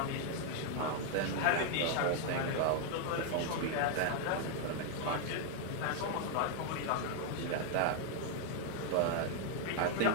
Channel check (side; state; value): both; different; correlation 0.00